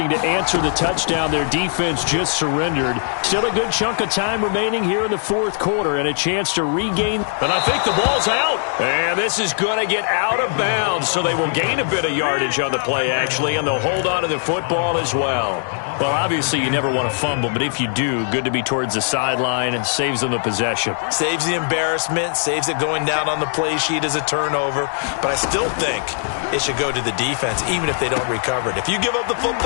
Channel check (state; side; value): silent; right; digital silence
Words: to answer the touchdown their defense just surrendered. Still a good chunk of time remaining here in the fourth quarter and a chance to regain. And I think the ball's out. And this is going to get out of bounds, so they will gain a bit of yardage on the play, actually, and they'll hold on to the football as well. Well, obviously you never want to fumble, but if you do, good to be towards the sideline and saves them the possession. Saves the embarrassment, saves it going down on the play sheet as a turnover. But I still think it should go to the defense, even if they don't recover it. If you give up the